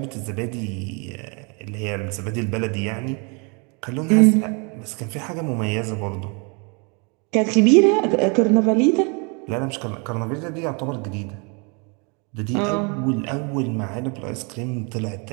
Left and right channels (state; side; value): quieter; left; 33.2 dB